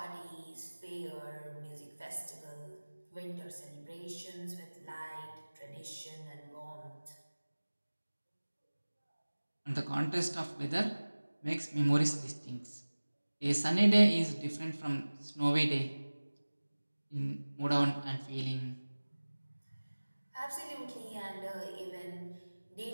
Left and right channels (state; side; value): inverted; both; correlation -1.00